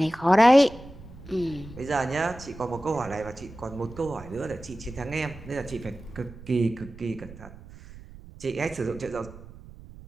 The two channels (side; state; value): right; noise; rumble, 17 dB below the sound